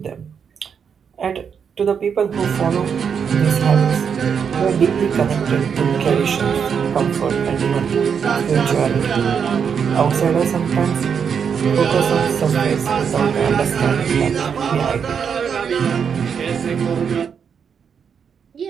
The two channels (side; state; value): left; quieter; 6.9 dB